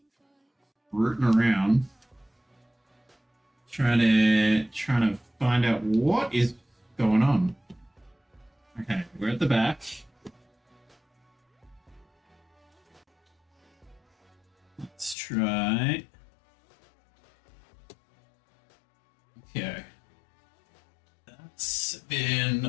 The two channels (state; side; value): drops out; right; at 15.2 s